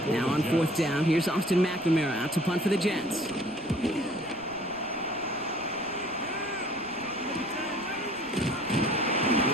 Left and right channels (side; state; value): right; noise; rumble, 23 dB below the sound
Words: Now on 4th down, here's Austin McNamara out to punt for the Jets.